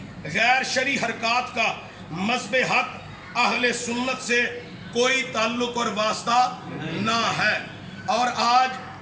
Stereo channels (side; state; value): both; identical; correlation 1.00